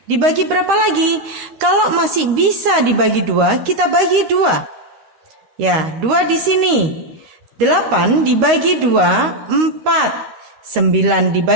Dibagi berapa lagi? Kalau masih bisa dibagi 2, kita bagi 2. Ya, 2 di sini. 8 dibagi 2, 4. 9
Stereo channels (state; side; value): late; left; 13 ms